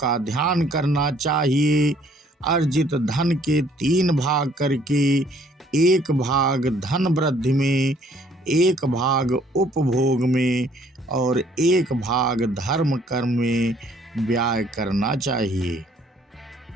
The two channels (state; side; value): normal; both; correlation 0.62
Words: ध्यान करना चाहिए। अर्जित धन के 3 भाग करके 1 भाग धन वृद्धि में, 1 भाग उपभोग में और 1 भाग धर्म कर्म में व्यय करना चाहिए।